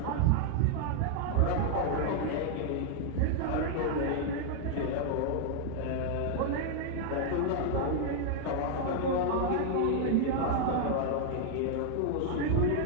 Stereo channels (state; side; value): different; both; correlation 0.00